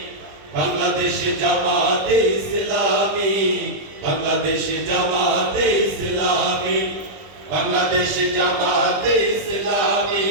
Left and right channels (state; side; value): late; left; 20 ms